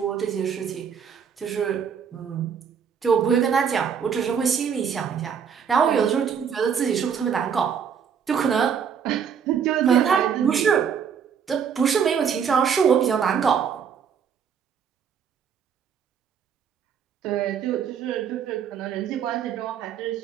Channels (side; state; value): left; quieter; 7.3 dB